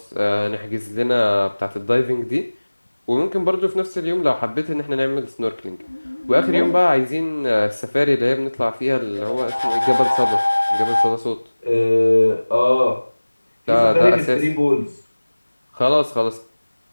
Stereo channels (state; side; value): inverted; both; correlation -1.00